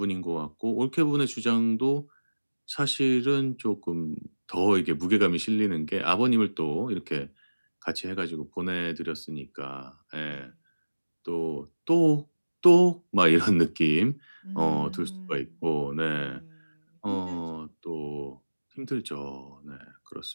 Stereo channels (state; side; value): inverted; both; correlation -1.00